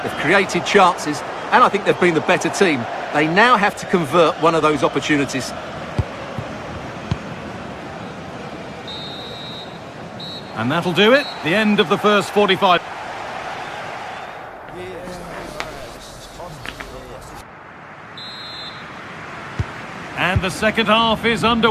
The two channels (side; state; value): both; identical; correlation 1.00